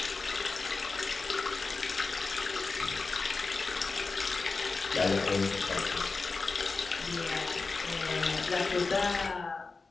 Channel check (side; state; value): right; quieter; 4.1 dB